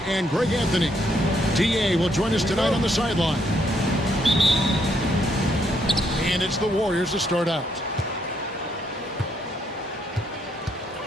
and Greg Anthony. DA will join us tonight on the sideline. And it's the Warriors to start out.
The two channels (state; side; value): normal; both; correlation 0.73